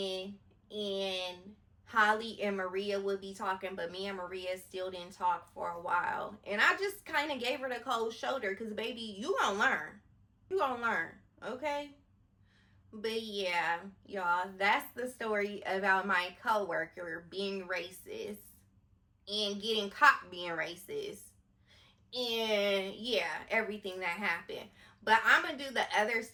and Holly and Maria would be talking, but me and Maria still didn't talk for a while. And I just kind of gave her the cold shoulder because, baby, you gonna learn. You gonna learn, okay? But yeah, y'all, that's the story about my coworker being racist and getting caught being racist. And yeah, everything that happened. But I'm gonna do the other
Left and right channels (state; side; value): identical; both; correlation 1.00